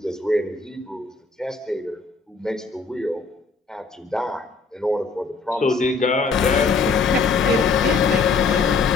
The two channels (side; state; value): right; quieter; 4.5 dB